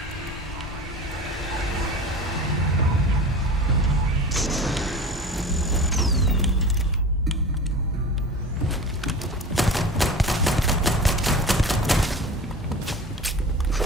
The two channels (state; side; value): normal; both; correlation 0.34